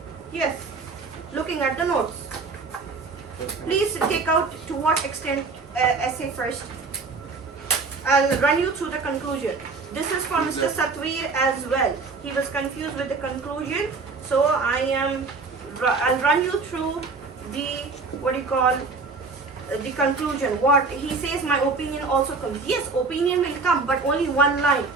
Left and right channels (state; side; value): quieter; left; 4.2 dB